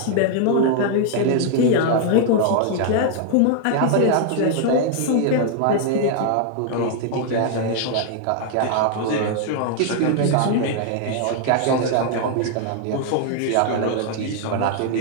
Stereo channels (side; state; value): both; different; correlation 0.00